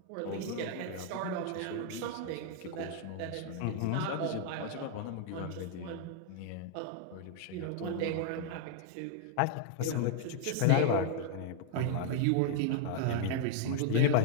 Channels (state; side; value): different; both; correlation 0.00